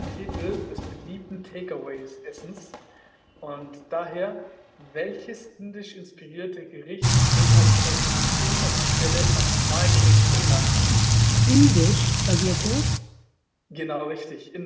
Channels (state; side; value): identical; both; correlation 1.00